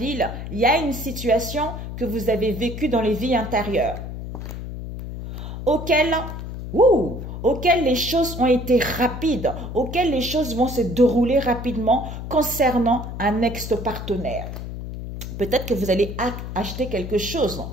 il y a une situation que vous avez vécue dans les vies intérieures, auxquelles les choses ont été rapides, auxquelles les choses vont se dérouler rapidement concernant un ex-partenaire. Peut-être que vous allez acheter quelque chose.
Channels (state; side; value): noise; left; hum, 8 dB below the sound